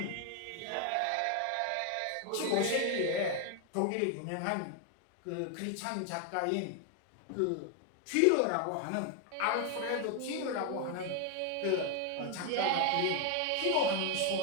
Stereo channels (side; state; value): both; different; correlation 0.01